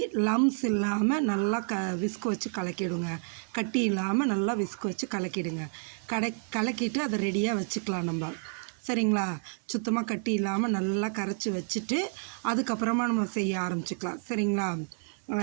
லம்ஸ் இல்லாமல் நல்லா விஸ்க் வச்சு கலக்கிடுங்க. கட்டி இல்லாமல் நல்லா விஸ்க் வச்சு கலக்கிடுங்க. கலக்கிட்டு அதை ரெடியாக வச்சுக்கலாம் நம்ம, சரிங்களா? சுத்தமாக கட்டி இல்லாமல் நல்லா கரைச்சி வச்சுட்டு அதுக்கப்புறமா நம்ம செய்ய ஆரம்பிச்சிக்கலாம், சரிங்களா?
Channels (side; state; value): left; silent; 58 dB below the other